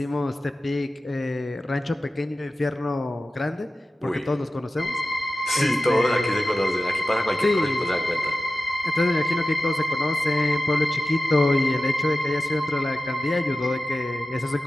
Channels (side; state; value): both; normal; correlation 0.94